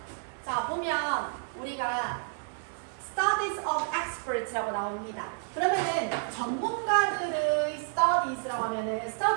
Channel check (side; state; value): left; silent; 58 dB below the other